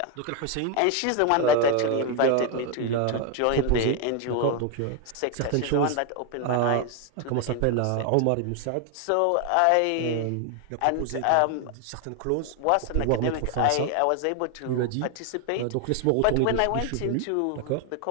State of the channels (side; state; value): both; different; correlation 0.01